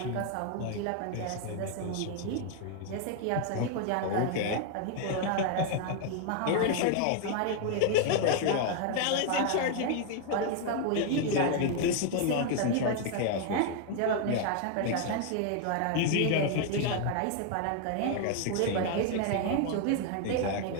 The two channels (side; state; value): both; different; correlation 0.00